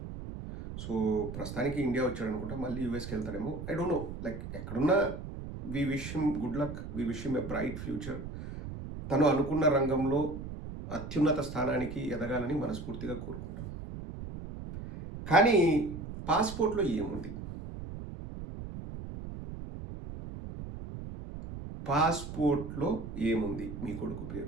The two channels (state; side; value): noise; right; rumble, 9 dB below the sound